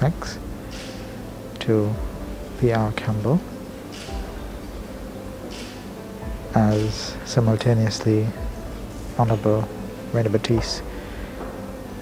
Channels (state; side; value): identical; both; correlation 1.00